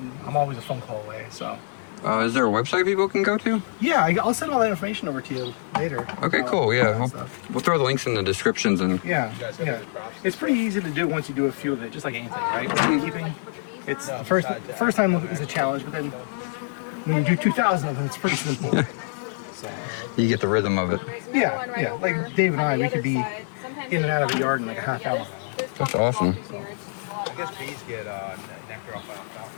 I'm always a phone call away. So Is there a website people can go to? yeah, I'll send all that information over to you later. Okay, cool. all Yeah, that stuff. we'll throw the links in the descriptions and Yeah. It's pretty easy to do once you do a few of it, just like anything, right? Beekeeping. It's the first time is a challenge, but then when you do 2,000 of them, it's pretty simple. you get the rhythm of it. Yeah. Like Dave and I, we could be in and out of the yard in like a half hour. That's awesome. I guess bees get nectar off alfalfa.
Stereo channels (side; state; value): right; silent; digital silence